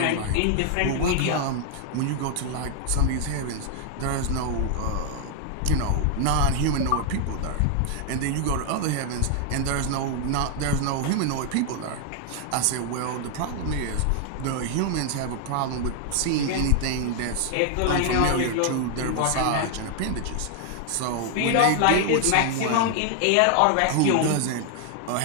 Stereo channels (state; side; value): different; both; correlation 0.00